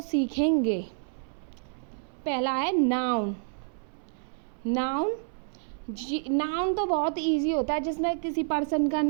सीखेंगे। पहला है नाउन। नाउन नाउन तो बहुत इजी होता है, जिसमें किसी पर्सन का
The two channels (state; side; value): silent; left; 59 dB below the other